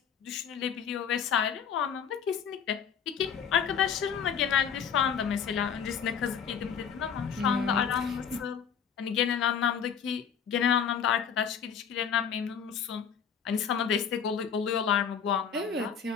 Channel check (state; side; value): quieter; right; 7.4 dB